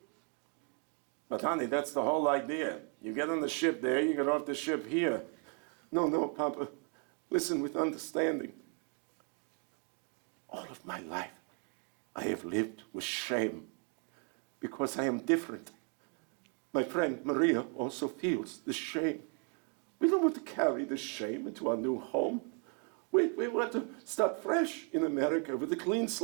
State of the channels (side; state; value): left; quieter; 37.1 dB